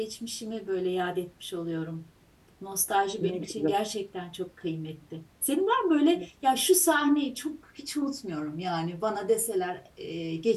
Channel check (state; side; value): identical; both; correlation 1.00